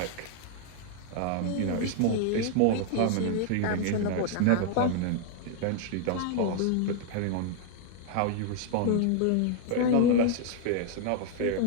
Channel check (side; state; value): both; different; correlation 0.00